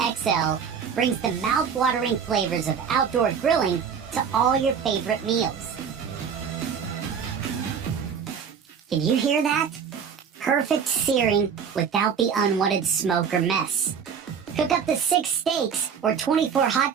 brings the mouth-watering flavors of outdoor grilling to all your favorite meals. Can you hear that? Perfect searing without the unwanted smoke or mess. Cook up to 6 steaks or 24 hot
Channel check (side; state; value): left; quieter; 7.0 dB